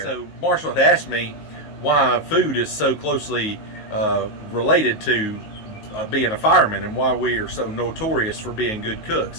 So, Marshall had asked me why food is so closely related to being a fireman and why we are so notorious for being good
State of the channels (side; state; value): right; late; 19 ms